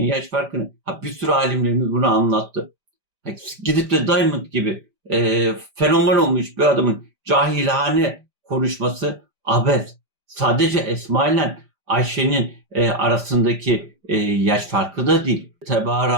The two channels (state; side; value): late; left; 5.0 ms